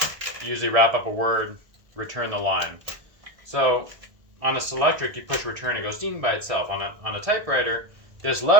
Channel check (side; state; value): left; late; 1.6 ms